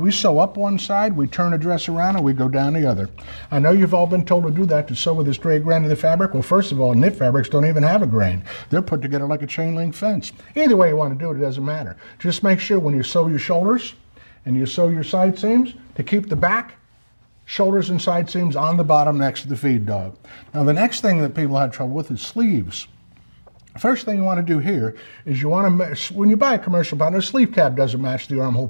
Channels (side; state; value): both; inverted; correlation -1.00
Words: sew up one side, we turn the dress around, and we go down the other. I know you've all been told to do that, to sew with a straight grain of the fabric. Well, first of all, knit fabrics don't even have a grain. They're put together like a chain link fence. Either way you want to do it, it doesn't matter. Just make sure when you sew your shoulders and you sew your side seams, to keep the back, shoulders and side seams on the bottom next to the feed dog. Now the next thing that people have trouble with is sleeves. First thing you want to do here is you want to, when you buy a commercial pattern, a sleeve cap doesn't match the armhole